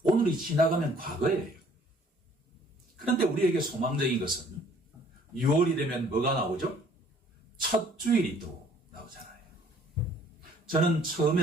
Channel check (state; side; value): normal; both; correlation 0.58